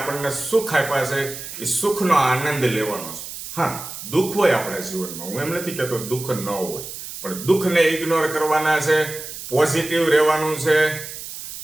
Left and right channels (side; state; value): right; noise; hiss, 10 dB below the sound